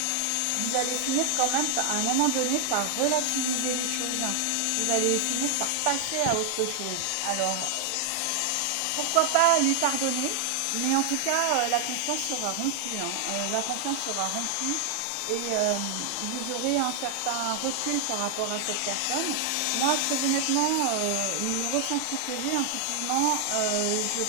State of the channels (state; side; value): different; both; correlation 0.00